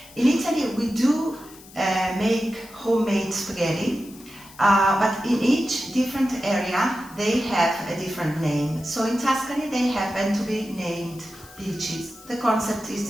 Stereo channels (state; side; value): noise; left; hiss, 21 dB below the sound